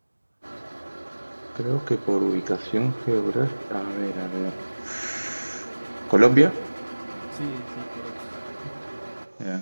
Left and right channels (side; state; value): both; inverted; correlation -1.00